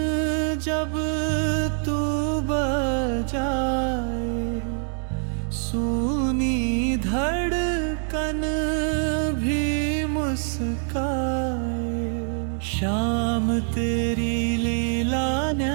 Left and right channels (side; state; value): left; silent; 62 dB below the other